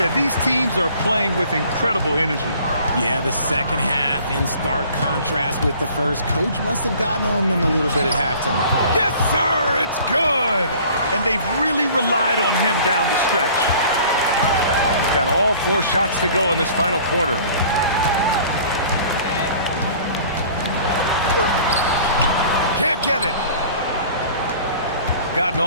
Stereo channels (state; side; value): inverted; both; correlation -0.50